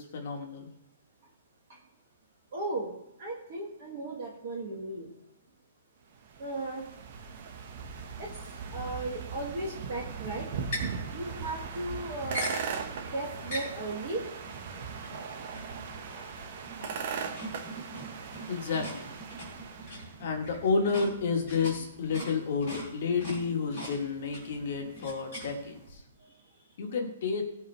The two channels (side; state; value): both; inverted; correlation -0.51